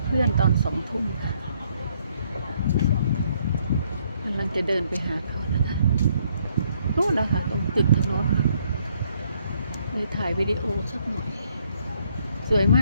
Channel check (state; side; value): inverted; both; correlation -0.69